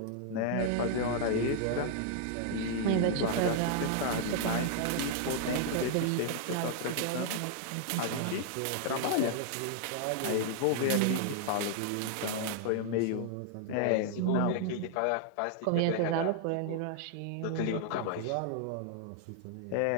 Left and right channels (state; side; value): different; both; correlation -0.01